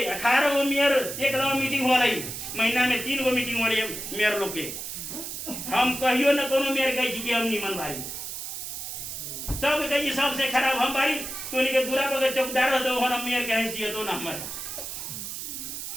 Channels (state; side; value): noise; right; hiss, 7 dB below the sound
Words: 18 गो मेयर एक मीटिंग हो रही, महीना में 3 गो मीटिंग हो रही है मेयर लोग के। हम कहियो न कोनो मेयर कही कि हम निमन बारी, सब कही सबसे खराब हम बारी। तो के दूरा पर चौकीदार हो तो हम मेयर के हैसियत हो ना हमारे।